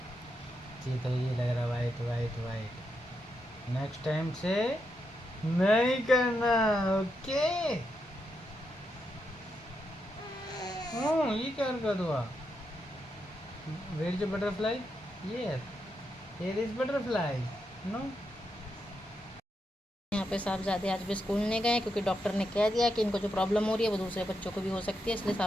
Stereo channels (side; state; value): both; normal; correlation 0.83